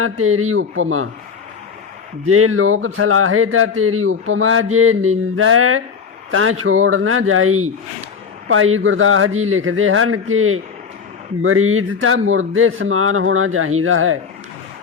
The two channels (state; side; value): quieter; right; 5.9 dB